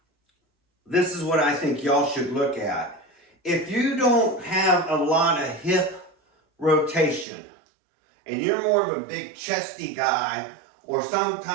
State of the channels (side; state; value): left; drops out; at 7.2 s